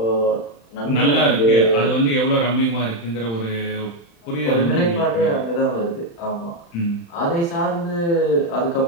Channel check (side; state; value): right; late; 35 ms